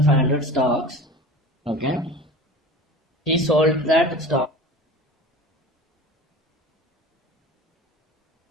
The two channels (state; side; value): normal; both; correlation 0.37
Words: stocks, okay, he sold that stocks